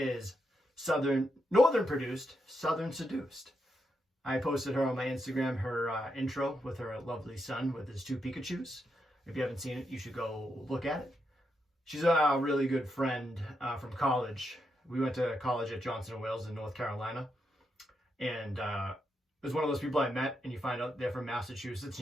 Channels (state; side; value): normal; both; correlation 0.83